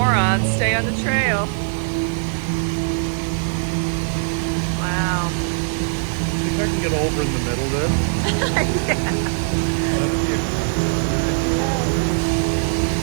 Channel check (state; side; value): silent; left; 65 dB below the other